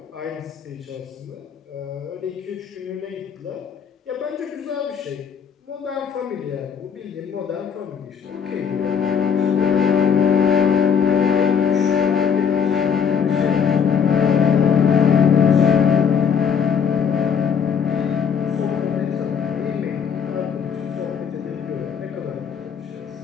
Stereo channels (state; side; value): quieter; right; 7.2 dB